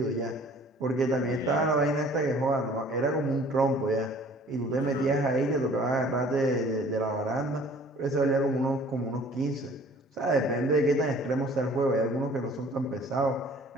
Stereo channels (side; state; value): both; normal; correlation 0.52